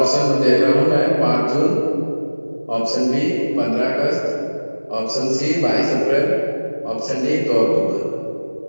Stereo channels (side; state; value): both; inverted; correlation -1.00